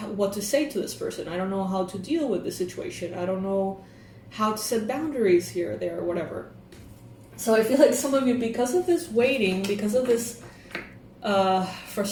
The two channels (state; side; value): identical; both; correlation 1.00